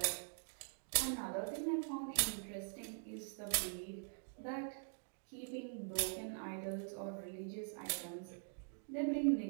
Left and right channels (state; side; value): silent; left; digital silence